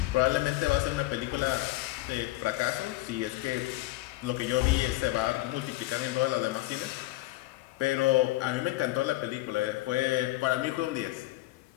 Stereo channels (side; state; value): right; quieter; 18.1 dB